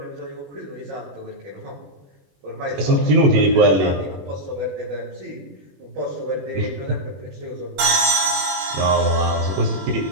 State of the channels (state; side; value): late; left; 21 ms